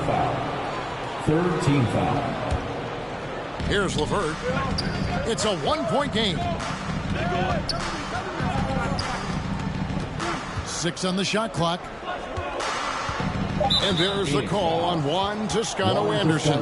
foul. Third team foul. Here's LeVert. It's a one-point game. 6 on the shot clock. And there's the call on Juan Toscano Anderson.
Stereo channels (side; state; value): both; identical; correlation 1.00